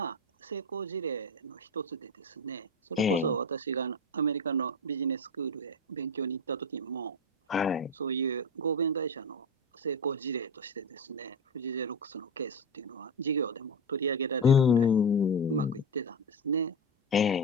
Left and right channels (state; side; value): normal; both; correlation 0.17